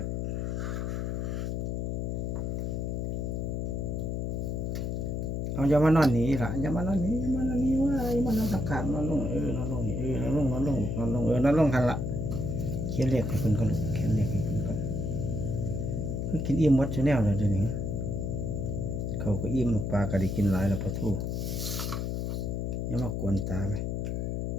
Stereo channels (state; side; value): noise; left; hum, 1 dB below the sound